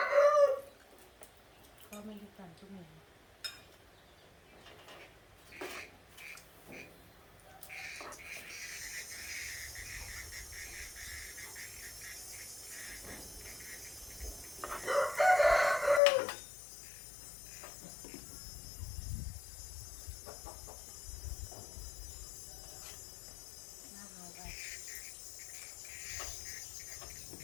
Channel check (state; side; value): drops out; right; at 16.0 s